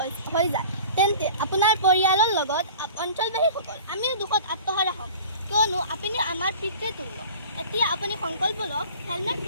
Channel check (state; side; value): inverted; both; correlation -0.42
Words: হৈ যায় তেন্তে আপোনাৰ পৰিয়ালৰ লগত অঞ্চলবাসীসকল আমি দুখত আত্মহাৰা হ'ম, কিয়নো আপুনি আমাৰ পিতৃতুল্য। এতিয়া আপুনি সংকল্প লওক, হেলমেট